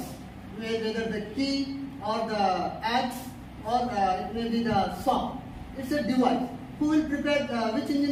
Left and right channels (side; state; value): both; identical; correlation 1.00